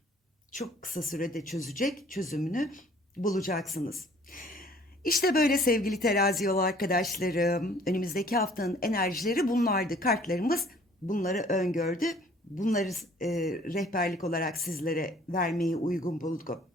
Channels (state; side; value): normal; both; correlation 0.55